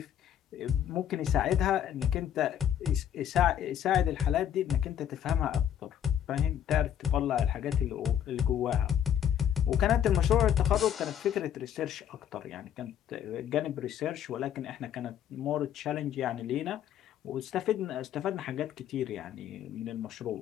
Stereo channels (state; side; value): quieter; right; 9.9 dB